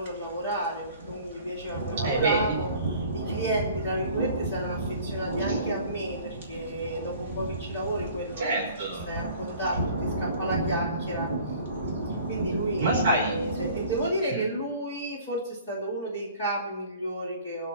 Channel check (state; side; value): inverted; both; correlation -0.49